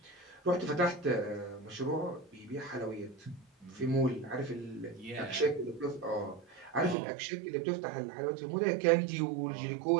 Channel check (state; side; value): drops out; left; at 7.0 s